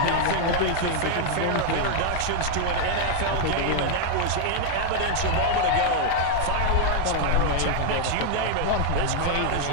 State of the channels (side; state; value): both; different; correlation 0.00